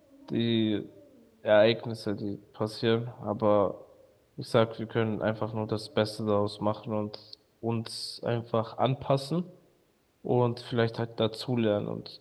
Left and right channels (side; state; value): both; identical; correlation 1.00